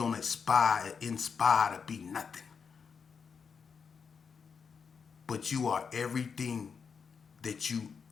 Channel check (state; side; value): quieter; right; 6.0 dB